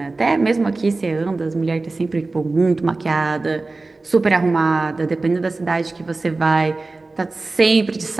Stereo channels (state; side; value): quieter; left; 3.4 dB